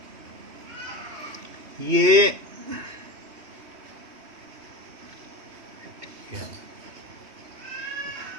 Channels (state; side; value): late; left; 3.1 ms